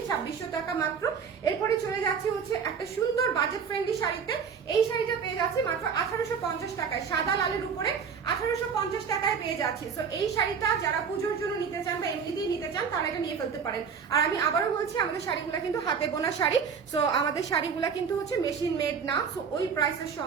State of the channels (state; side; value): quieter; left; 6.4 dB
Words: 2600 টাকা মাত্র। এরপরে চলে যাচ্ছি হচ্ছে একটা সুন্দর বাজেট ফ্রেন্ডলি শাড়িতে। এই শাড়িটা পেয়ে যাচ্ছি মাত্র 1800 1850 টাকায়, সাদা লালের উপরে 1850 টাকায় পেয়ে যাচ্ছি। সো এই শাড়িটা যারা পুজোর জন্য নিতে চান বা এমনিতেই নিতে চান তারা এটা নিয়ে ফেলতে পারেন। আর আমি আবারও বলছি, আমাদের শাড়িগুলো কিন্তু হাতে বোনা শাড়ি। সো আমাদের শাড়িগুলো কিন্তু হচ্ছে মেশিন মেড না। সো ওই প্রাইসের